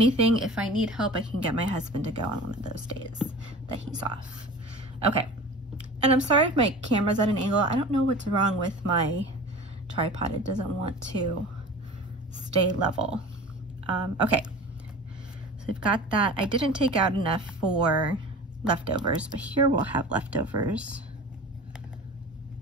if I need help, I can get my husband to go on one of those days that he's off. Okay, and I'm sorry if my camera's at an angle. I don't know what's wrong with my tripod. It doesn't want to stay level. Okay. So we've got that. I didn't take out enough for leftovers, but here we'll have leftovers.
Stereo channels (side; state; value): both; normal; correlation 0.38